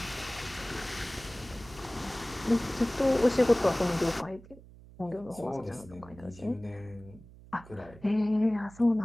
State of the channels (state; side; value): noise; right; hum, 20 dB below the sound